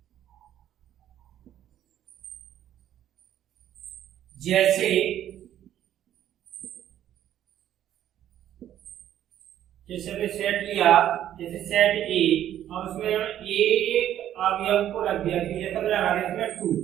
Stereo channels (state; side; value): quieter; left; 11.4 dB